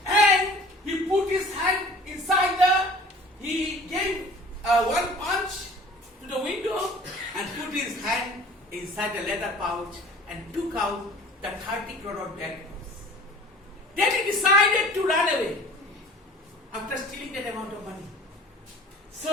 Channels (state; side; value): normal; both; correlation 0.46